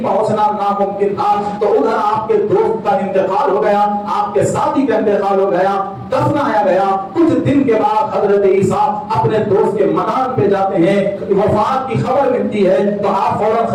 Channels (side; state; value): both; identical; correlation 1.00